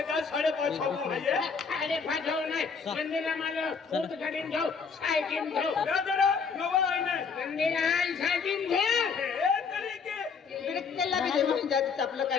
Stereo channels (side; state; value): right; quieter; 5.6 dB